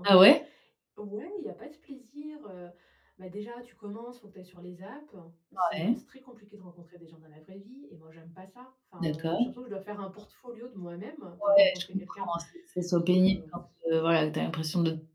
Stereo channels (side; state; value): both; identical; correlation 1.00